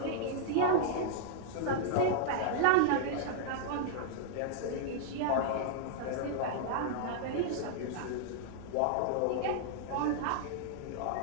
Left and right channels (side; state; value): both; different; correlation -0.01